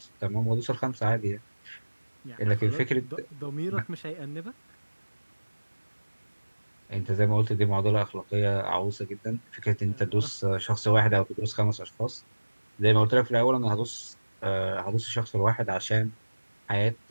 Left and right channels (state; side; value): inverted; both; correlation -1.00